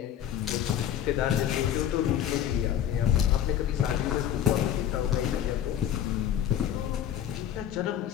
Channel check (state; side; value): quieter; right; 10.3 dB